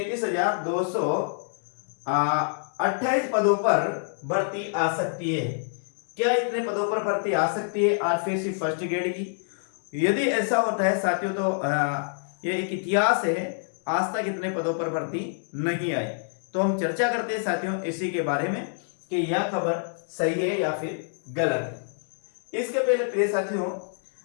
पदों पर भर्ती आ सकती है। क्या इतने पदों पर भर्ती आ सकती है आरपीएससी फर्स्ट ग्रेड की? यदि ऐसा होता है साथियों तो ये एक इतिहास है, आज तक इतने पदों पर भर्ती नहीं आई। तो हम चर्चा करते हैं साथियों इसी के बारे में कि यह खबर सही है या फिर गलत है। इसके पहले प्रिय साथियों,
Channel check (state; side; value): silent; right; digital silence